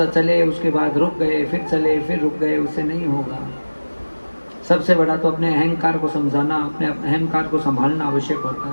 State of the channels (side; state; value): both; inverted; correlation -1.00